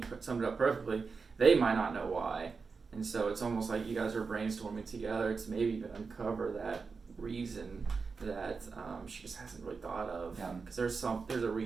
you summed it up perfectly. They might not know why. And so it's almost like you guys are brainstorming together to maybe even uncover that reason that she just hasn't really thought of. Because there's a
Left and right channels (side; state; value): left; quieter; 4.9 dB